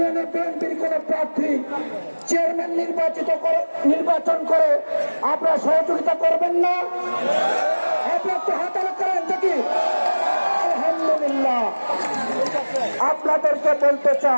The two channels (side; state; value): both; inverted; correlation -1.00